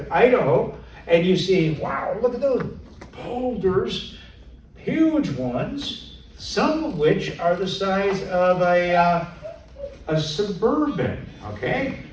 Idaho, and you see, wow, look at those boulders, huge ones, some of which are the size of a Suburban, okay?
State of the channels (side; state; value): both; identical; correlation 1.00